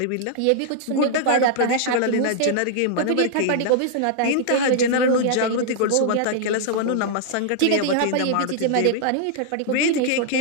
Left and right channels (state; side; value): different; both; correlation -0.01